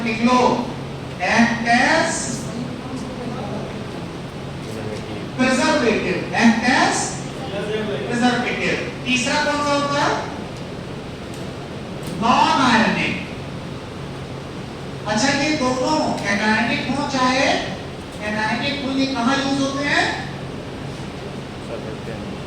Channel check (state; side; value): identical; both; correlation 1.00